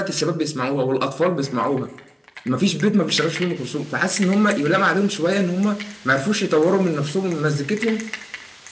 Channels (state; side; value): identical; both; correlation 1.00